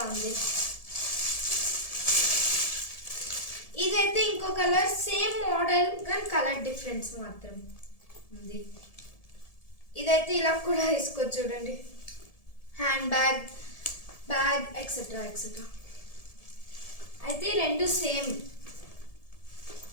ఉంది. ఇదైతే ఇంకో కలర్, సేమ్ మోడల్ కానీ కలర్ డిఫరెన్స్ మాత్రం ఉంది. ఇదైతే ఇలా కూడా వేసుకోవచ్చు. చూడండి, hand bag, bag etcetera etcetera. అయితే రెండు సేమ్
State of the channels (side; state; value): right; late; 1.7 ms